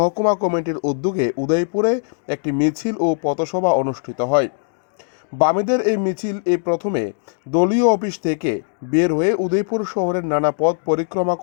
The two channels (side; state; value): right; silent; digital silence